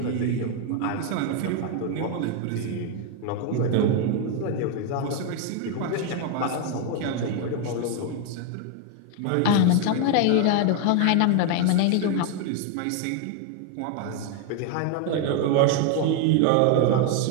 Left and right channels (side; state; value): both; different; correlation 0.01